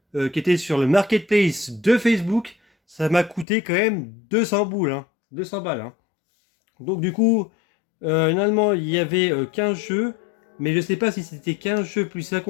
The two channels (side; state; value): right; drops out; at 3.5 s